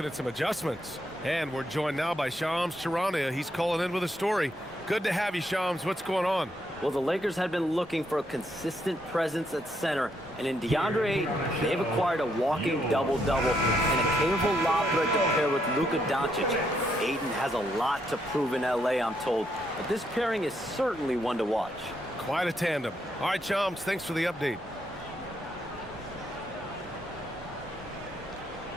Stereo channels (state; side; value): normal; both; correlation 0.76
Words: at some adjustments. And we're joined now by Shams Charania. He's calling in with a story. Good to have you, Shams. What's going on? Well, the Lakers had been looking for a consistent presence at center, and in DeAndre Ayton, they've acquired a walking double-double and a capable lob threat to pair with Luka Doncic. Ayton has a lot to prove in LA, I'm told, but this pairing is certainly one to watch. Quite a tandem. All right, Shams, thanks for the update.